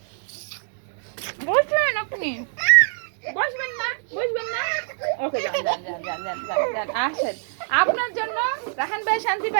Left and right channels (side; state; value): left; silent; digital silence